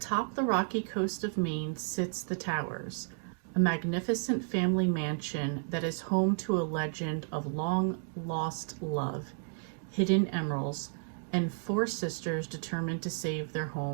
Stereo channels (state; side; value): silent; left; 55 dB below the other